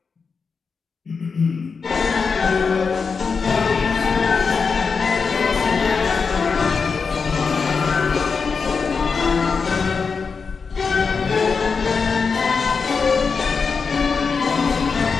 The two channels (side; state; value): right; quieter; 5.2 dB